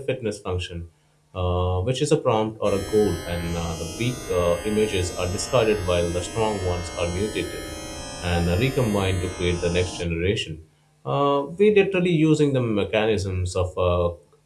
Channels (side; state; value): both; identical; correlation 1.00